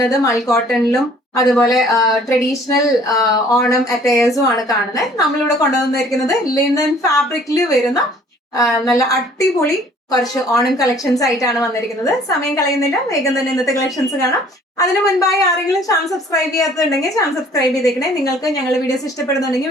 മൽ കോട്ടണിലും അതുപോലെ ട്രഡീഷണൽ ഓണം അറ്റയേഴ്സും ആണ് കാണുന്നത്. നമ്മളിവിടെ കൊണ്ടുവന്നിരിക്കുന്നത് ലിനൻ ഫാബ്രിക്കിൽ വരുന്ന നല്ല അടിപൊളി കുറച്ച് ഓണം കളക്ഷൻസ് ആയിട്ടാണ് വന്നിരിക്കുന്നത്. സമയം കളയുന്നില്ല, വേഗം തന്നെ ഇന്നത്തെ കളക്ഷൻസ് കാണാം. അതിന് മുൻപായി ആരെങ്കിലും ചാനൽ സബ്സ്ക്രൈബ് ചെയ്യാത്തുണ്ടെങ്കിൽ ചാനൽ സബ്സ്ക്രൈബ് ചെയ്തേക്കണേ. നിങ്ങൾക്ക് ഞങ്ങളുടെ വീഡിയോസ്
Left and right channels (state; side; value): normal; both; correlation 0.55